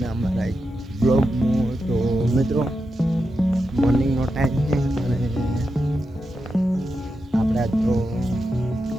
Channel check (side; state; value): both; normal; correlation 0.87